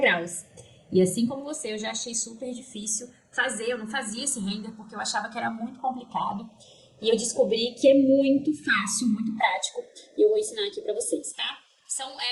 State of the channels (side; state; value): both; identical; correlation 1.00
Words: E assim como você, eu já achei super difícil fazer, eu não fazia esse render porque eu achava que era muito complicado. E eu descobri que é muito fácil, muito prático. E eu vou ensinar aqui pra vocês, tá? São